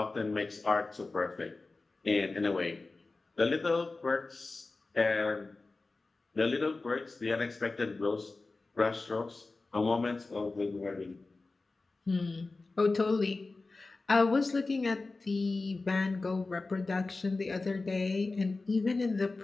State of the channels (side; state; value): right; quieter; 3.5 dB